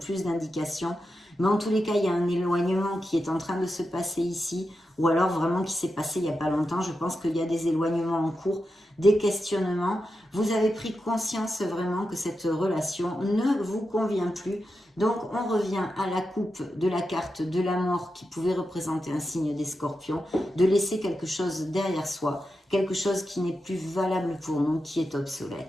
d'indications, mais en tous les cas il y a un éloignement qui est en train de se passer ici, ou alors vraiment qui s'est passé il n'y a pas longtemps. Je pense qu'il y a des éloignements en cours, des questionnements. Vous avez pris conscience vraiment que cette relation ne vous convient plus. Donc on revient à la coupe de la carte de la mort qui pouvait représenter un signe des scorpions, de laisser quelque chose derrière soi, quelque chose qui n'est plus valable pour nous, qui est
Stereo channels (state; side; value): normal; both; correlation 0.89